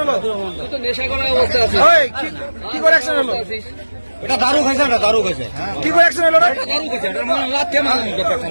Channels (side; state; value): both; inverted; correlation -1.00